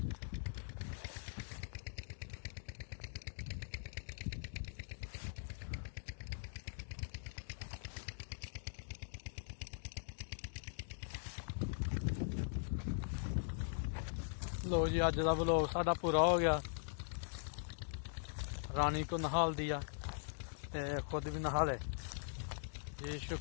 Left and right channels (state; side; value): silent; right; digital silence